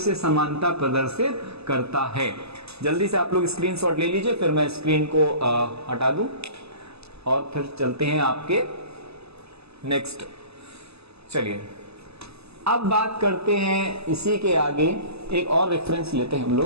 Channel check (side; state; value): left; late; 0.79 ms